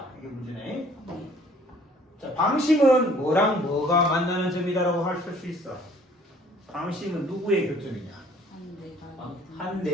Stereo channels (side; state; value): both; normal; correlation 0.56